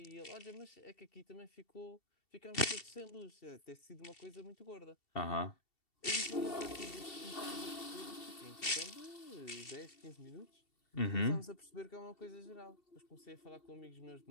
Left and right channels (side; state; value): right; late; 2.7 ms